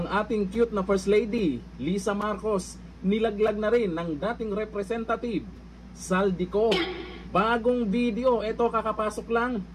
ating cute na First Lady, Lisa Marcos, nilaglag na rin ng dating representative, Saldico. Bagong video, ito kakapasok lang,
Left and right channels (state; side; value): identical; both; correlation 1.00